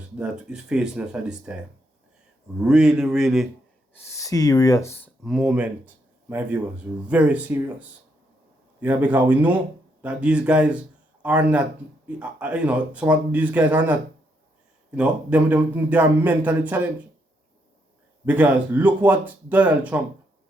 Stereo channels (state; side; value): normal; both; correlation 0.77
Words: that is facing us at this time. Really, really serious moment, my viewers. Very serious. Yeah, because we know that these guys are not, you know, some of these guys are not, you know, they are mentally challenged. Because look what Donald Trump